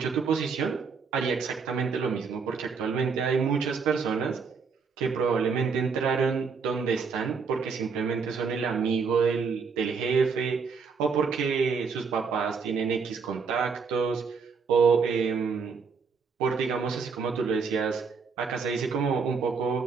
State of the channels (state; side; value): quieter; left; 5.4 dB